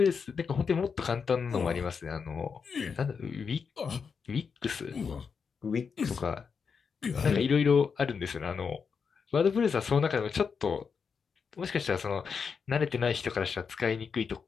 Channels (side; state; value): right; quieter; 5.9 dB